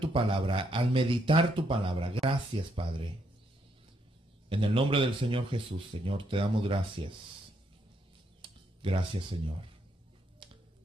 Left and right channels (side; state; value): both; normal; correlation 0.75